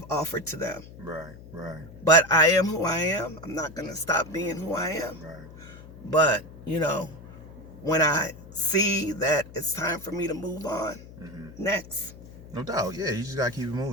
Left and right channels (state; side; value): noise; left; hum, 17 dB below the sound